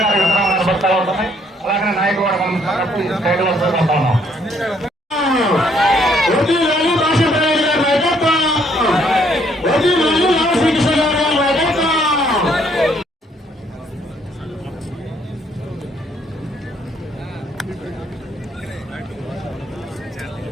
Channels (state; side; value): normal; both; correlation 0.67